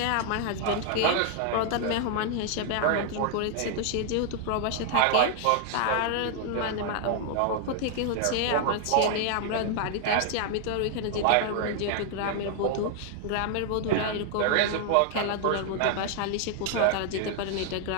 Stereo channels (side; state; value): both; different; correlation 0.00